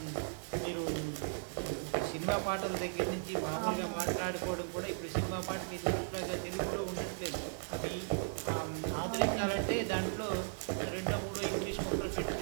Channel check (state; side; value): silent; left; digital silence